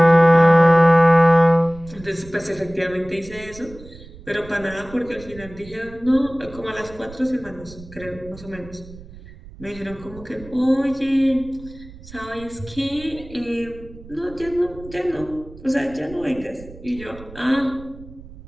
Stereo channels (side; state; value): right; noise; rumble, 18 dB below the sound